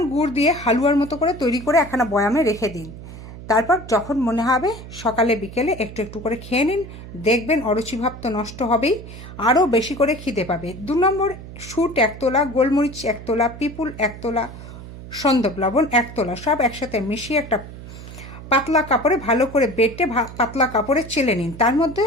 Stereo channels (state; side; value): noise; right; hum, 14 dB below the sound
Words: গুড় দিয়ে হালুয়ার মতো করে তৈরি করে একখানা বয়ামে রেখে দিন। তারপর যখন মনে হবে সকালে বিকেলে একটু একটু করে খেয়ে নিন, দেখবেন অরুচিভাব তো নষ্ট হবেই, আরও বেশি করে খিদে পাবে। 2 নম্বর, শুট 1 তোলা, গোলমরিচ 1 তোলা, পিপুল 1 তোলা, সন্দক লবণ 1 তোলা, সব একসাথে মিশিয়ে একটা পাতলা কাপড়ে ভালো করে বেটে পাতলা কাপড়ে চেলে নিন। তার মধ্যে